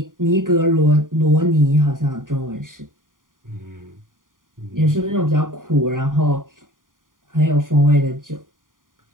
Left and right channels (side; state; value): left; late; 0.89 ms